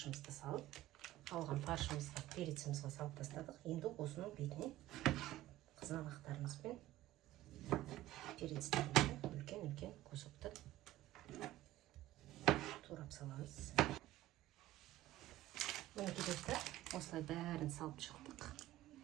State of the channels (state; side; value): quieter; left; 15.2 dB